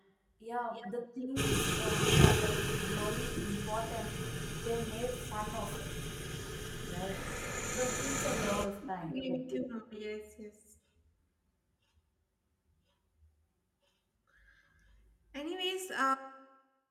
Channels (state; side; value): identical; both; correlation 1.00